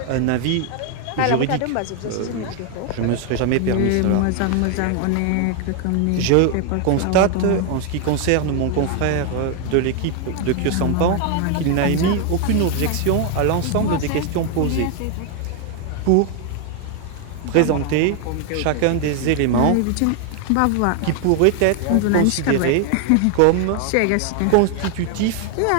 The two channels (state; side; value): different; both; correlation 0.00